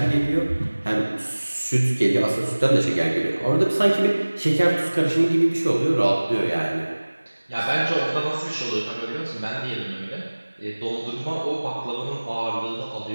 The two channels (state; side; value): inverted; both; correlation -1.00